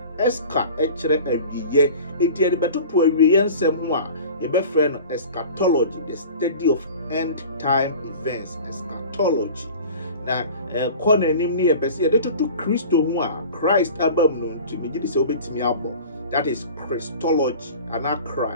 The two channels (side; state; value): both; inverted; correlation -0.40